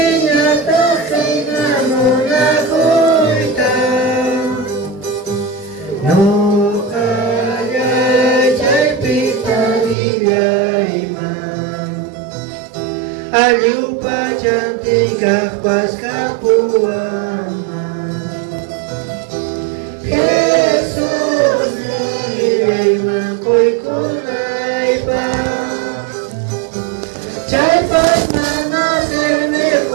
kay namuna kuita. No kaya chay pitagilay man. Aliw pa cantik pas kapuaman. Jesus nilay makoy kunay pa. Chay pas manaserme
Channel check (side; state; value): left; drops out; at 10.0 s